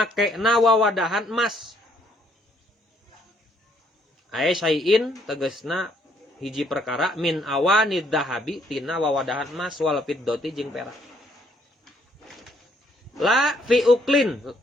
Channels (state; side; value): normal; both; correlation 0.68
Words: na wawadahan emas. Aya syai'in tegasna hiji perkara min awanid dahabi tina wawadahan emas wal fiddati jeung perak. La fi uklin,